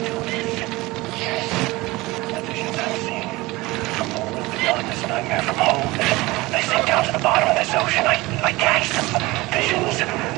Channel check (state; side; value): quieter; left; 21.2 dB